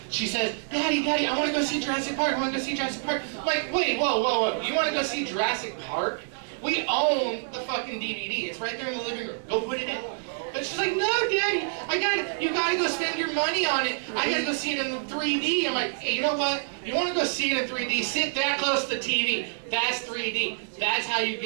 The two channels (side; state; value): left; silent; digital silence